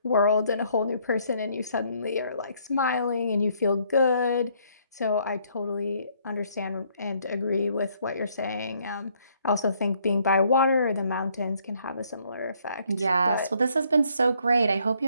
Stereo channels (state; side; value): inverted; both; correlation -0.67